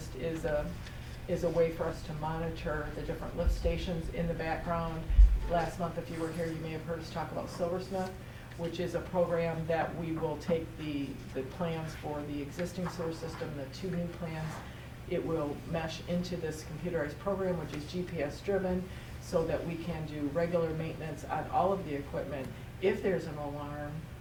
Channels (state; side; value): identical; both; correlation 1.00